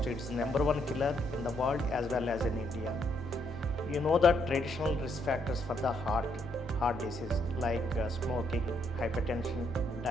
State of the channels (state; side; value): normal; both; correlation 0.74